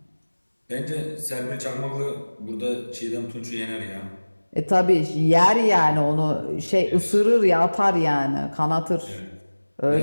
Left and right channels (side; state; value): both; inverted; correlation -1.00